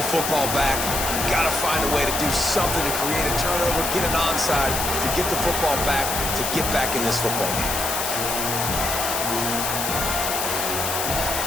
football back. You got to find a way to do something to create a turnover, get an onside, to get the football back, to get back in this football game.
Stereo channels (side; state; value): left; noise; hiss, 2 dB below the sound